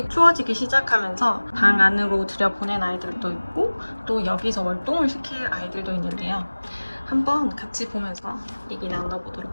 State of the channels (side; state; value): both; inverted; correlation -1.00